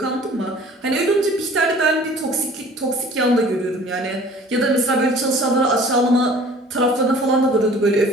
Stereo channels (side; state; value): both; normal; correlation 0.48